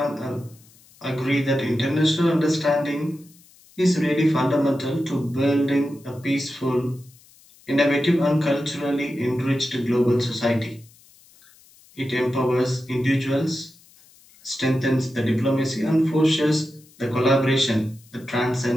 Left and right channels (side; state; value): left; noise; hiss, 27 dB below the sound